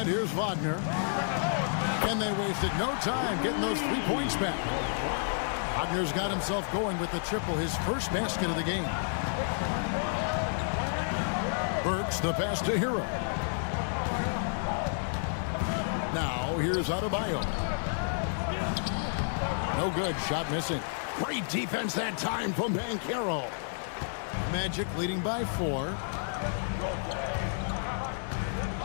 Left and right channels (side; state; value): right; silent; digital silence